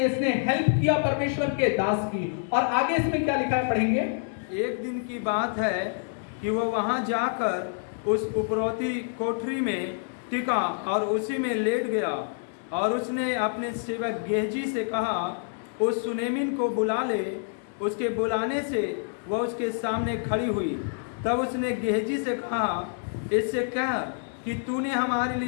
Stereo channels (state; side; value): silent; right; 60 dB below the other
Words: हेल्प किया परमेश्वर के दास की। और आगे इसमें क्या लिखा है पढ़ेंगे। एक दिन की बात है कि वह वहां जाकर उस उपरौती कोठरी में टिका और उसी में लेट गया। और उसने अपने सेवक गेहजी से कहा, उस सुनेमिन को बुला ले। उसके बुलाने से वह उसके सामने खड़ी हुई। तब उसने गेहजी से कहा, इससे कह कि तूने हमारे